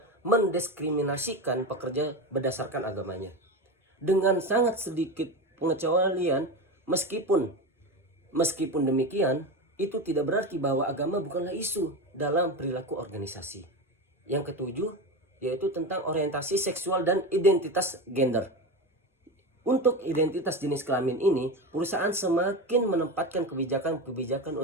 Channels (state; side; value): normal; both; correlation 0.21